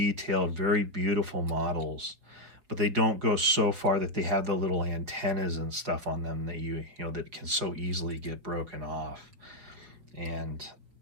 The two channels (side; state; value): left; late; 4.5 ms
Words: very beautiful models, but they don't go so far that they have the little antennas and stuff on them that that can so easily get broken off. And